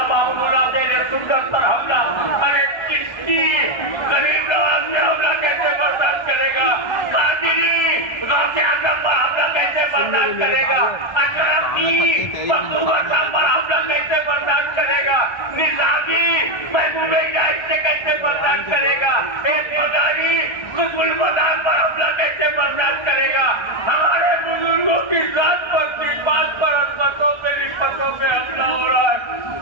बाबूला देने सुंदर पर हमला। अरे किसकी गरीब नवाज ने हमला कैसे बर्दाश्त करेगा? कादिरी गौसे आजम पर हमला कैसे बर्दाश्त करेगा? अशरफ की मखदूम साहब पर हमला कैसे बर्दाश्त करेगा? निजामी महबूबे इलाही से कैसे बर्दाश्त करेगा? एक मदारी कुतुल मदार पर हमला कैसे बर्दाश्त करेगा? हमारे बुजुर्गों की जात पर, बात पर, अजमतों पे, निस्बतों पे हमला हो रहा है।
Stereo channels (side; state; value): right; late; 1.3 ms